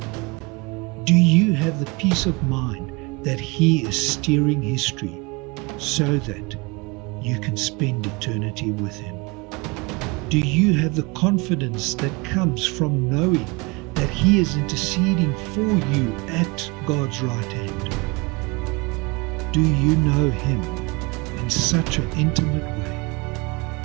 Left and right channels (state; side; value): quieter; left; 26.7 dB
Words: Do you have the peace of mind that He is steering history so that you can spend eternity with Him? Do you have the confidence that comes from knowing that He is interceding for you at God's right hand? Do you know Him in such an intimate way?